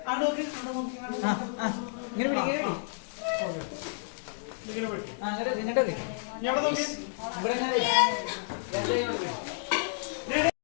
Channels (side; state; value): right; silent; digital silence